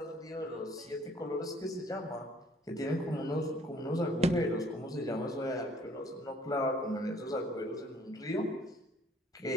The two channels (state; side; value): normal; both; correlation 0.59